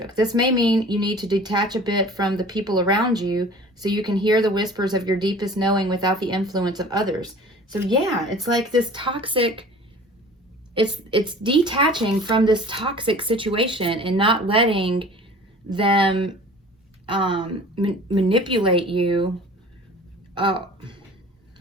This may mean you need to detach a bit from the people around you so you can hear the whispers of your deepest knowing without the influence of others. So yeah, it's like this toxic, it's detaching from this toxic situation and not letting them manipulate you. Oh, not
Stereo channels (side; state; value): both; normal; correlation 0.44